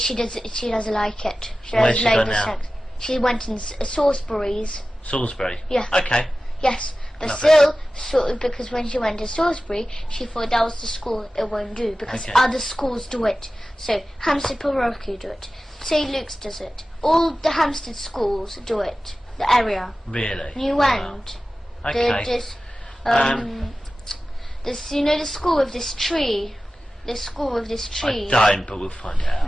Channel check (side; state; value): both; normal; correlation 0.95